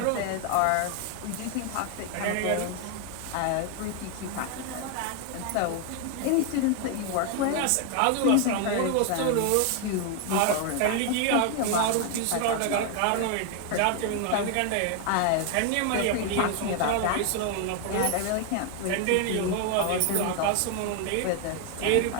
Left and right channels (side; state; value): both; different; correlation 0.01